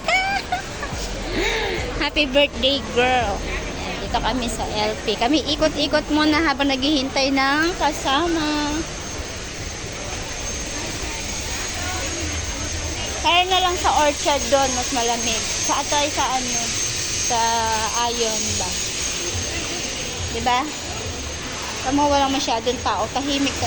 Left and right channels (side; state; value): both; identical; correlation 1.00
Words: Happy birthday, girl. Ayan, dito kami sa LP. Kami ikot-ikot muna habang naghihintay ng kasama. Kaya na lang sa orchard doon, mas malamig. Sa atay sa ano, sa Ayon ba? Diba? Tama, walang masyadong tao. Tahimik